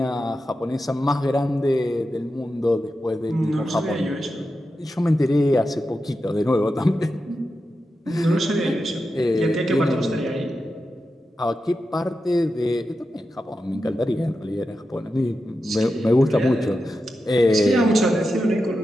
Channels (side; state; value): both; normal; correlation 0.90